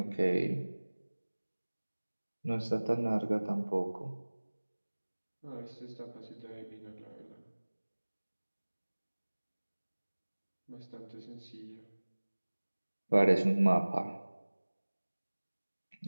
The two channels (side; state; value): both; inverted; correlation -1.00